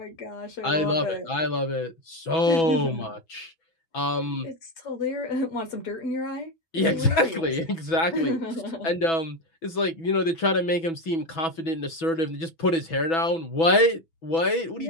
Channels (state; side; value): late; right; 6.1 ms